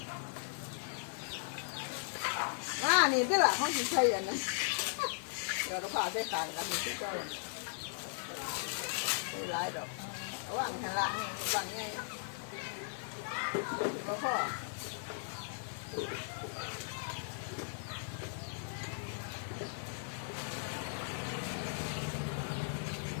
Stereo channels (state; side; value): silent; right; 53 dB below the other